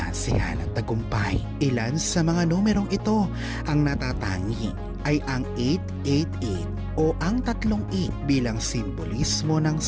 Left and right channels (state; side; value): identical; both; correlation 1.00